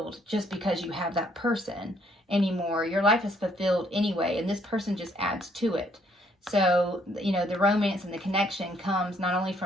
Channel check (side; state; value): both; normal; correlation 0.67